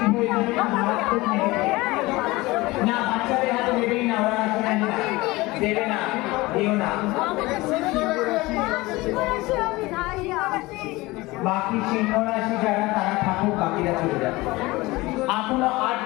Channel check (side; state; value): right; quieter; 21.0 dB